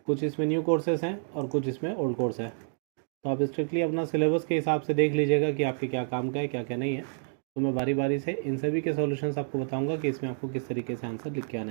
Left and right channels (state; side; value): silent; left; digital silence